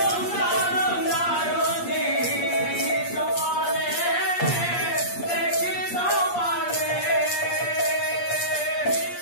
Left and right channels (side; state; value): right; late; 8.5 ms